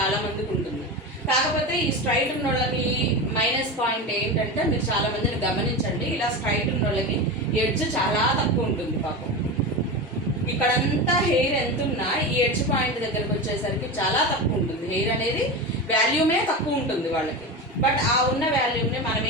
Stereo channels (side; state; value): both; normal; correlation 0.23